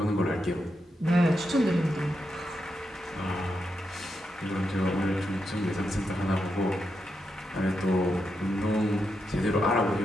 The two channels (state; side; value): normal; both; correlation 0.85